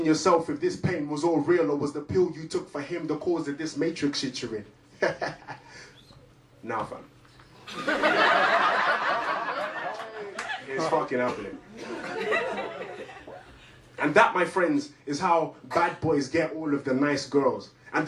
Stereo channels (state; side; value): identical; both; correlation 1.00